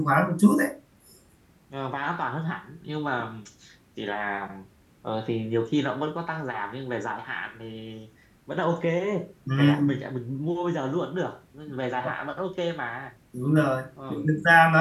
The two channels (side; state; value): both; identical; correlation 1.00